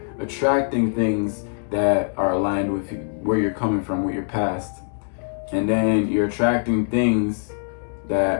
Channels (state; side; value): silent; right; digital silence